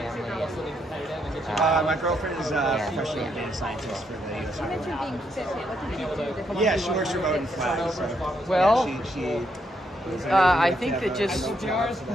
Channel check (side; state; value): both; normal; correlation 0.77